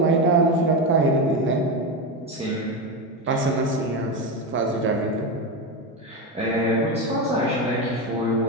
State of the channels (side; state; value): both; normal; correlation 0.15